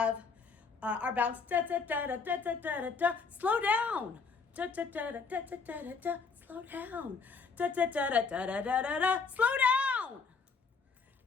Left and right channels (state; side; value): quieter; right; 5.0 dB